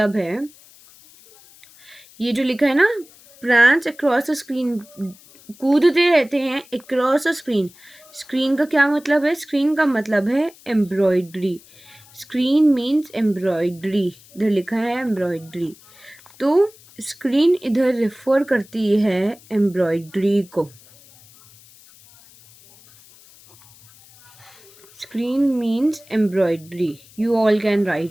है ये जो लिखा है ना, प्रैंस अक्रॉस अ स्क्रीन, कूदते रहते हैं अक्रॉस अ स्क्रीन. स्क्रीन का क्या मतलब है? स्क्रीन का मतलब है एम्ब्रॉयडरी. स्क्रीन मीन्स एम्ब्रॉयडरी, इधर लिखा है एम्ब्रॉयडरी. तो स्क्रीन इधर रेफर करती है एम्ब्रॉयडरी को. Screen means embroidery. You all can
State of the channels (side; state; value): left; noise; hiss, 25 dB below the sound